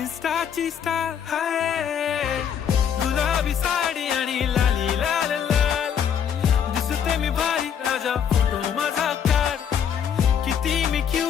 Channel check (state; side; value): quieter; right; 8.3 dB